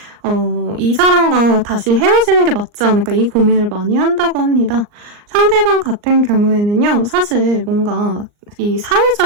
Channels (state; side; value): late; left; 39 ms